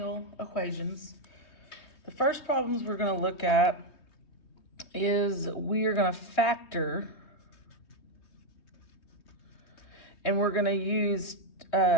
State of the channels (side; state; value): right; late; 3.2 ms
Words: equations. The first problems we're going to look at is we are going to factor, and we're going to use